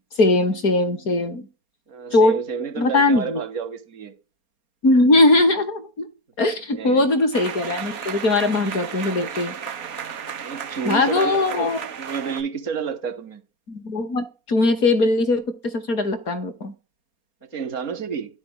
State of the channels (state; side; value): late; right; 4.3 ms